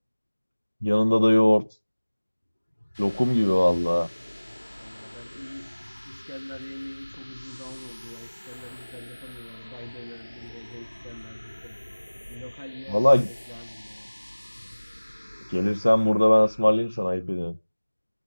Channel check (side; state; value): both; inverted; correlation -1.00